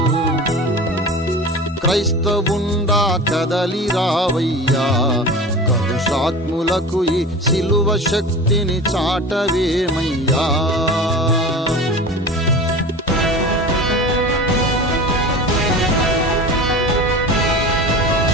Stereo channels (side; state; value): both; normal; correlation 0.34